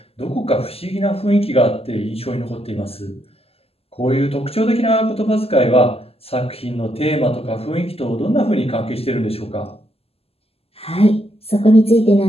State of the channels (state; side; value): late; right; 0.29 ms